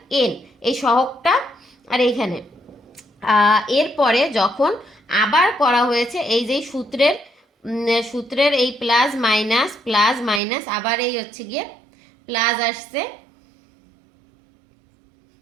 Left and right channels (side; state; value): left; drops out; at 10.4 s